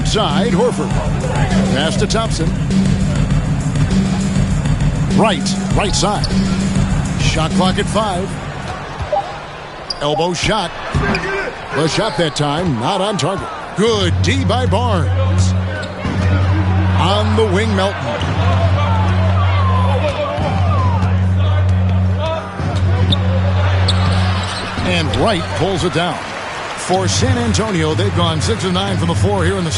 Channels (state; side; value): identical; both; correlation 1.00